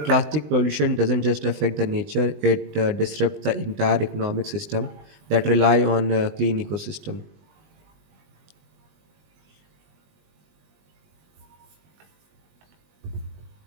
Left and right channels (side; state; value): left; late; 20 ms